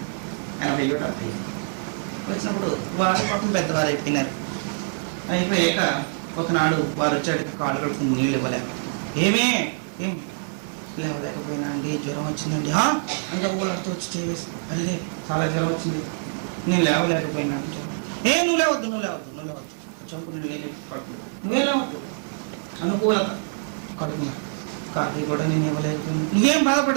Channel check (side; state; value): left; silent; 62 dB below the other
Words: 80 వచ్చినప్పుడు వారి పాపం పెద్దవారు అయిపోయినారు. అయిపోయాక ఒకనాడు వారు వచ్చాడు, కాళ్ళు కడుపుకుని నీళ్ళు ఇవ్వలేక, ఏం లేవలేకపోయినా అండి, జ్వరం వచ్చిందండి అంత ఊళ్ళతో వచ్చి చేసి, అల్లే చాలా జ్వరం వచ్చింది, నేను లేవలేకపోయినా అంటే, నువ్వు లేవద్దు చంపు నువ్వే లేవద్దు, అనుకూలత కడుపున్నా, కాఫీ కూడా నేను ఇవ్వలేకపోయినా, నువ్వేం